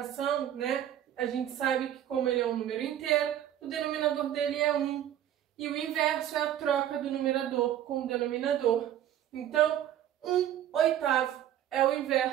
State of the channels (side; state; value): left; quieter; 11.2 dB